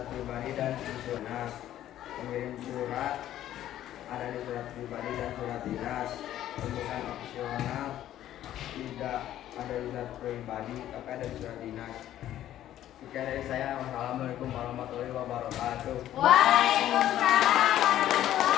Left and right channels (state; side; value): quieter; right; 12.4 dB